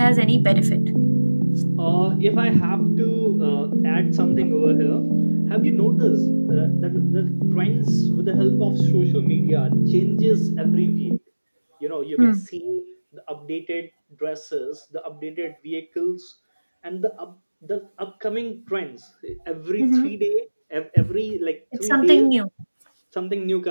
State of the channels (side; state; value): both; inverted; correlation -1.00